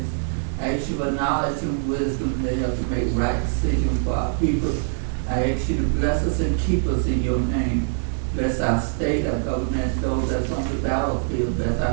I ask you for knowledge and wisdom to help to make right decisions for our people. I ask you to bless us and keep us in your name. Bless our state, our government, those that's on the battlefield, bless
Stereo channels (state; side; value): silent; left; digital silence